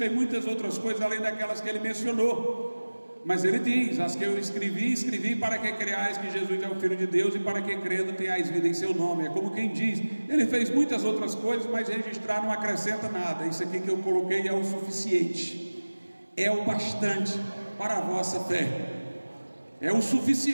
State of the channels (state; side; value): inverted; both; correlation -1.00